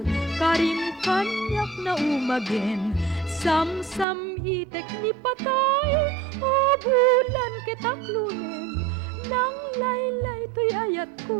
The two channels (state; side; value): drops out; left; at 4.0 s